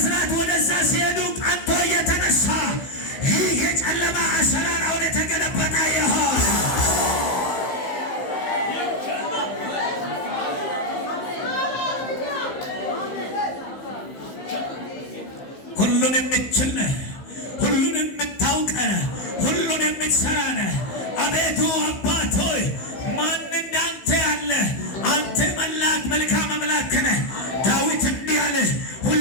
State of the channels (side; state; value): right; late; 15 ms